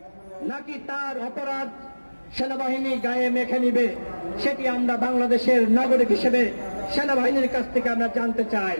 নাকি তার অপরাধ সেনাবাহিনী গায়ে মেখে নিবে? সেটি আমরা বাংলাদেশের নাগরিক হিসেবে সেনাবাহিনীর কাছ থেকে আমরা জানতে চাই।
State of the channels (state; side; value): inverted; both; correlation -1.00